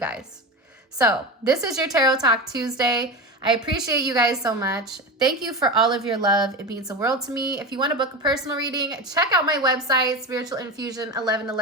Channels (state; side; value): normal; both; correlation 0.23